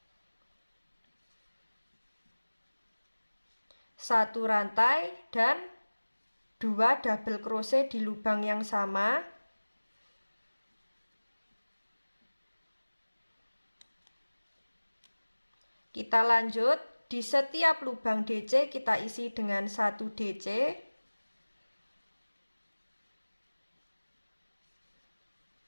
1 rantai dan 2 double crochet di lubang yang sama. Kita lanjut, di setiap lubang DC kita isi dengan 1 DC.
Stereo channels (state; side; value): inverted; both; correlation -1.00